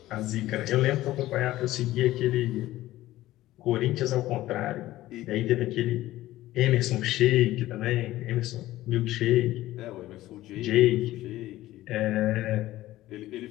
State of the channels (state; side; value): quieter; right; 15.8 dB